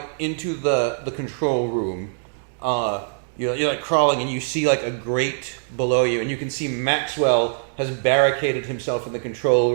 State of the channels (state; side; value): silent; left; digital silence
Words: into the control room. You're like crawling, and you see like a grate below you, and you can see Maxwell has barricaded himself in the control